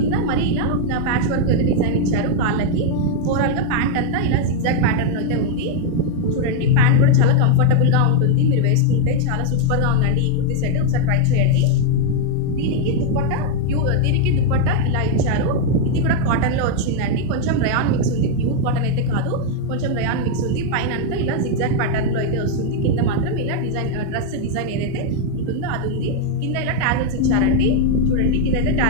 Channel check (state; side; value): different; both; correlation 0.00